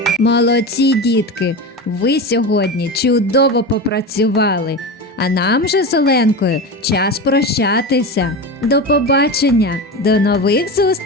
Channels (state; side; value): normal; both; correlation 0.24